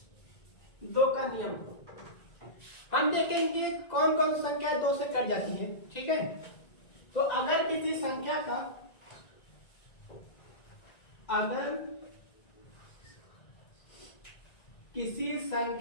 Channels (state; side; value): late; right; 1.9 ms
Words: हम देखेंगे कौन कौन सी संख्या 2 से कट जाती है। ठीक है, तो अगर किसी संख्या का